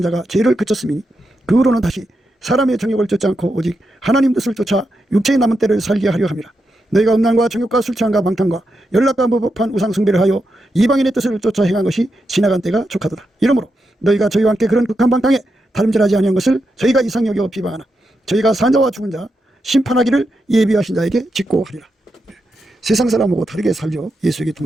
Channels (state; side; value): normal; both; correlation 0.86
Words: 자가 죄를 그쳤으니 그 후로는 다시 사람의 정욕을 쫓지 않고 오직 하나님 뜻을 쫓아 육체의 남은 때를 살게 하려 함이라. 너희가 음란과 정욕과 술 취함과 방탕과 연락과 무법한 우상 숭배를 하여 이방인의 뜻을 쫓아 행한 것이 지나간 때가 족하도다. 이러므로 너희가 저희와 함께 그런 극한 방탕에 다름질하지 아니한 것을 저희가 이상히 여겨 비방하나 저희가 산 자와 죽은 자 심판하기를 예비하신 자에게 직고하리라. 세상 사람하고 다르게 살죠. 예수에게